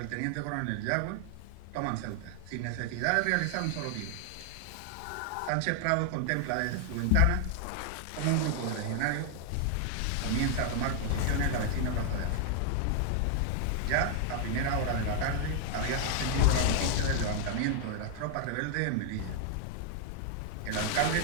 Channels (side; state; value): both; different; correlation 0.00